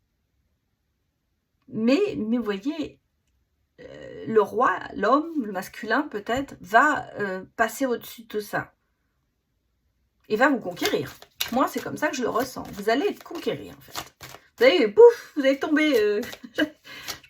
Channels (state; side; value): identical; both; correlation 1.00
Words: vous voyez, le roi, l'homme, le masculin peut-être, va passer au-dessus de tout ça. Et va vous conquérir. Moi, c'est comme ça que je le ressens. Vous allez être conquéri, en fait. Vous allez, pouf, vous allez tomber. Je